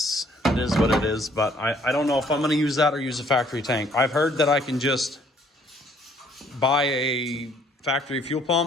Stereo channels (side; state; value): both; normal; correlation 0.62